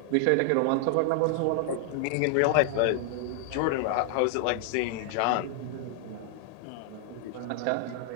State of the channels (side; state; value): both; different; correlation 0.00